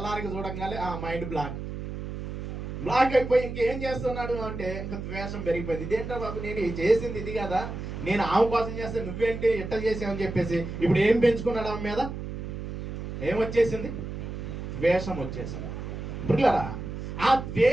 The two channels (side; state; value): right; noise; hum, 7 dB below the sound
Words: చూడంగానే మైండ్ బ్లాక్ అయిపోయి ఇంకేం చేస్తున్నాడు అంటే ఇంకా ద్వేషం పెరిగిపోయింది. ఇదేంటో బాబు, నేను చేసింది ఇది కదా, నేను ఆమె కోసం చేస్తే నువ్వేంటి ఇట్ట చేసావని చెప్పేసి ఇప్పుడు ఏం పెంచుకున్నాడు ఆమె మీద? ఏమొచ్చేసింది? ద్వేషం వచ్చేసింది. పిల్లరా, ఆ